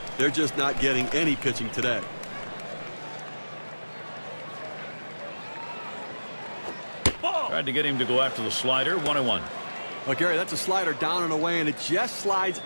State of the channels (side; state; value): both; inverted; correlation -1.00